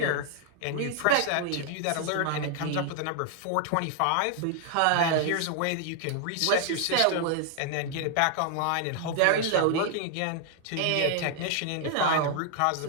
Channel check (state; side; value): different; both; correlation 0.00